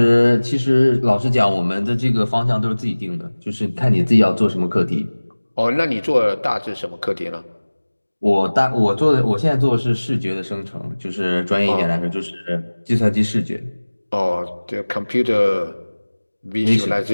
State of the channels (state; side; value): inverted; both; correlation -1.00